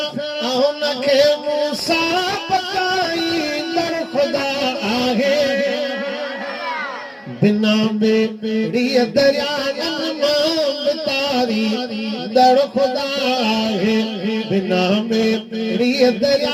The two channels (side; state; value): both; identical; correlation 1.00